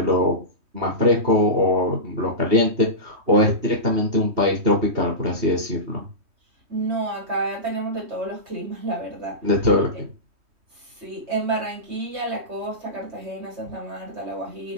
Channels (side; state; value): left; late; 3.2 ms